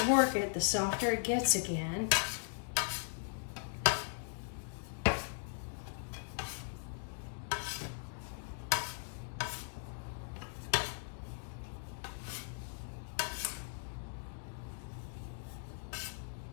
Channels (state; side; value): silent; right; digital silence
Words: work it, the softer it gets again.